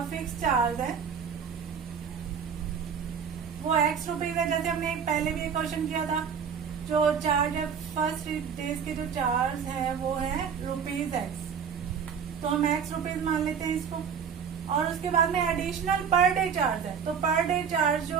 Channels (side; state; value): left; quieter; 7.0 dB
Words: फिक्स चार्ज है वो x रुपीज है, जैसे हमने पहले भी एक क्वेश्चन किया था। जो चार्ज है फर्स्ट 3 डेज के जो चार्ज है वो है ₹x, तो हम x रुपीज मान लेते हैं इसको। और उसके बाद में एडिशनल पर डे चार्ज है, तो पर डे चार्ज जो